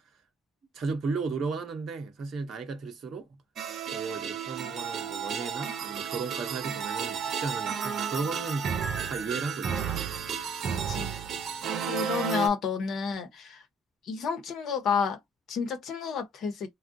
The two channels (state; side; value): normal; both; correlation 0.59